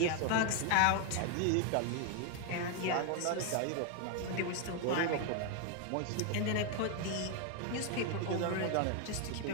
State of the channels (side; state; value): both; different; correlation 0.01